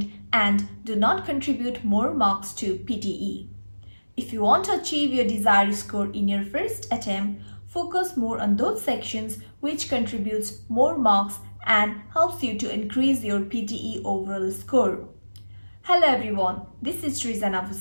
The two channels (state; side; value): inverted; both; correlation -1.00